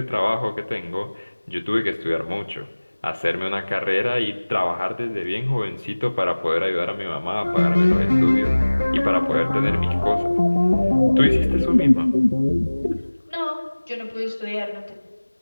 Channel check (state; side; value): inverted; both; correlation -1.00